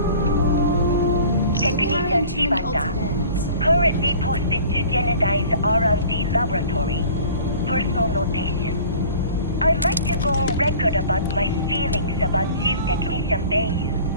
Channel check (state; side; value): inverted; both; correlation -0.46